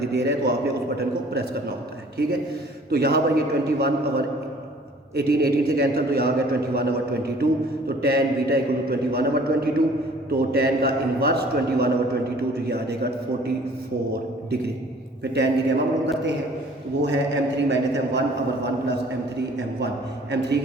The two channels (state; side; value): normal; both; correlation 0.53